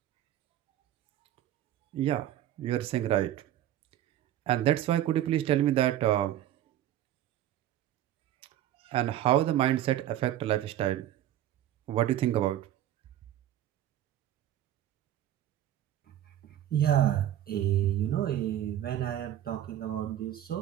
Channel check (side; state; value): left; quieter; 12.2 dB